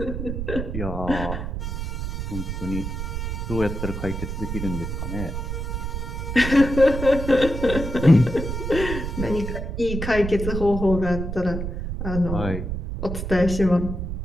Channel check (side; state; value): right; noise; rumble, 4 dB below the sound